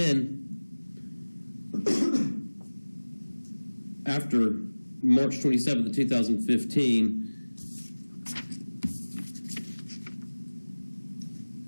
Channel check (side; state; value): both; inverted; correlation -1.00